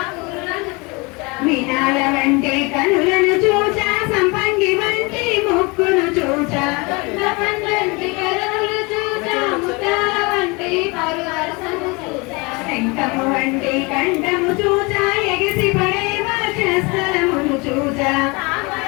చూచా వినాల వంటి కనులను చూచా సంపంగి వంటి ముక్కును చూచా పండంటి కనులు చూచా ముత్యాల వంటి పరువరసను చూచా శంఖము వంటి కంఠము చూచా ఎగిసి పడే వర్షస్థలమును చూచా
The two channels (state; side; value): quieter; right; 27.3 dB